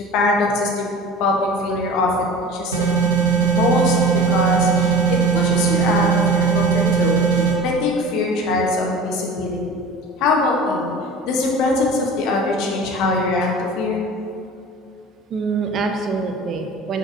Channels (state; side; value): normal; both; correlation 0.37